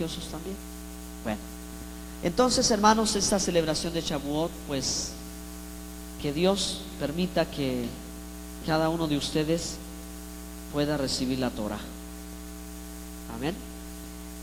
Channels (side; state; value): both; identical; correlation 1.00